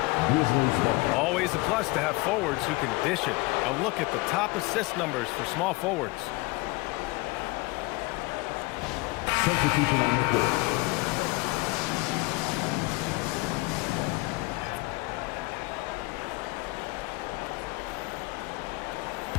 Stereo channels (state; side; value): quieter; right; 23.6 dB